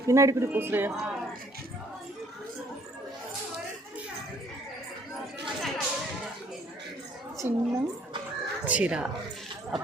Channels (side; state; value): both; normal; correlation 0.61